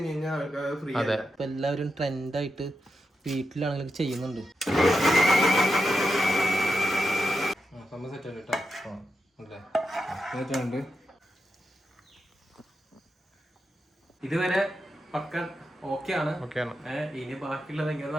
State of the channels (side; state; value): both; normal; correlation 0.87